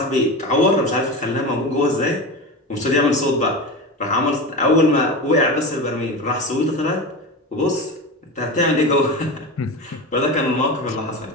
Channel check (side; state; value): both; normal; correlation 0.25